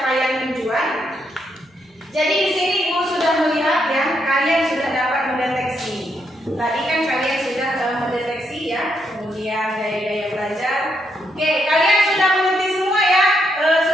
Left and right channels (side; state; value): both; normal; correlation 0.78